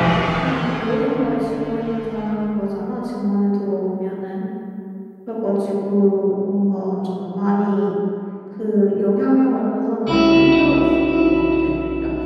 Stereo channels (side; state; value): both; identical; correlation 1.00